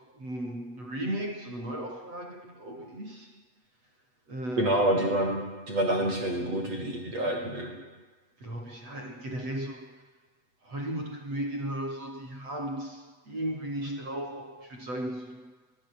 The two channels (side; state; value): left; late; 8.1 ms